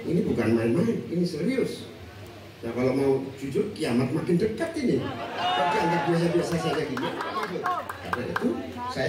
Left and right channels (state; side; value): identical; both; correlation 1.00